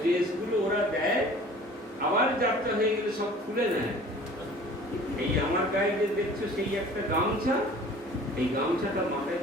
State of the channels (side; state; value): both; normal; correlation 0.47